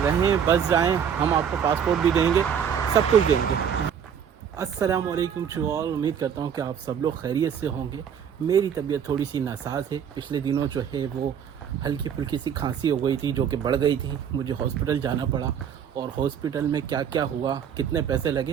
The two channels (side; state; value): left; quieter; 8.0 dB